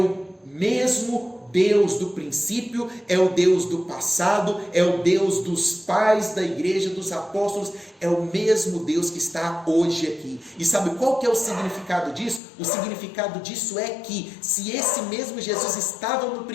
mesmo Deus do princípio, é o Deus do passado, é o Deus dos pais da igreja, dos apóstolos, é o mesmo Deus que está hoje aqui. E sabe qual que é o significado disso? O significado disso é que, se esse mesmo Jesus estava no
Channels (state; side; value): drops out; right; at 12.4 s